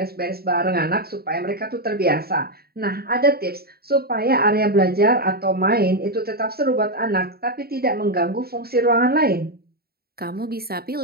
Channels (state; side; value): late; left; 0.45 ms